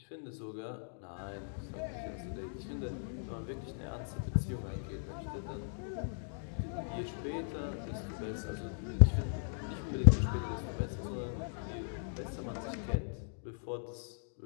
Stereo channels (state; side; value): silent; right; digital silence